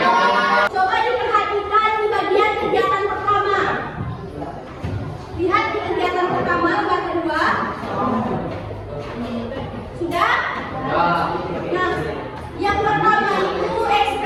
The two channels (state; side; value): identical; both; correlation 1.00